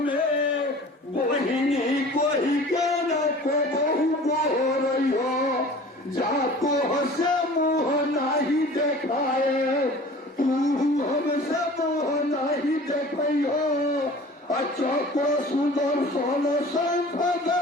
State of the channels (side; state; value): both; normal; correlation 0.44